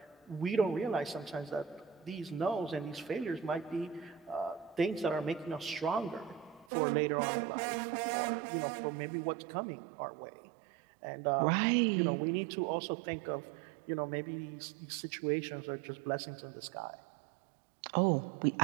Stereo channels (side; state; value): left; drops out; at 6.7 s